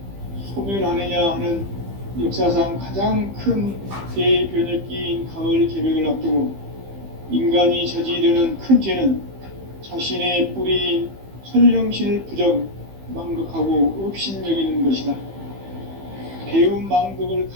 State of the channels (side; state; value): left; late; 15 ms